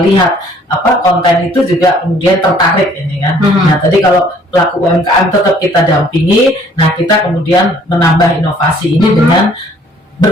konten itu juga kemudian tertarik ini kan. Nah tadi kalau pelaku UMKM tetap kita dampingi, nah kita kemudian menambah inovasi ini dengan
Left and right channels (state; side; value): normal; both; correlation 0.59